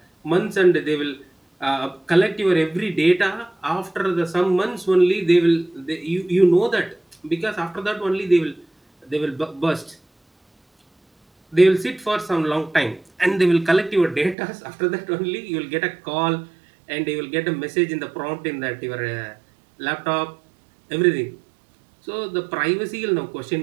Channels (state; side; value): drops out; left; at 14.4 s